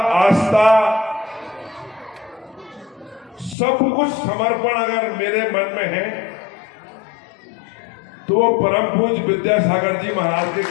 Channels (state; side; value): drops out; right; at 3.6 s